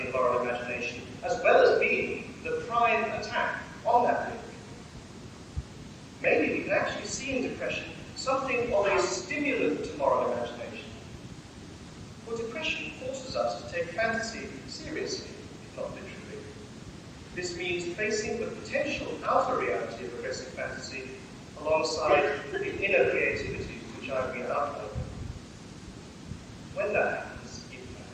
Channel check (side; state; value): both; identical; correlation 1.00